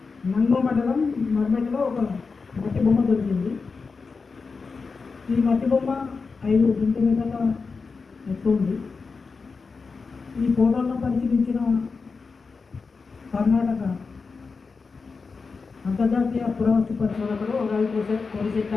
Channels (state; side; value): quieter; right; 4.7 dB